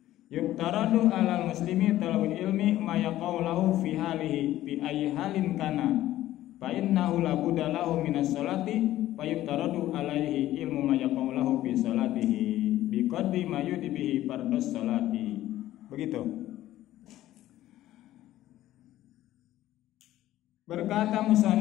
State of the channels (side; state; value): right; quieter; 14.3 dB